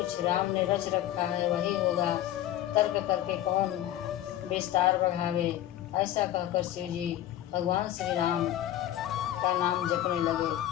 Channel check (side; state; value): right; quieter; 12.9 dB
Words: राम ने रच रखा है वही होगा। तर्क करके कौन विस्तार बढ़ावे? ऐसा कहकर शिव जी भगवान श्री राम का नाम जपने लगे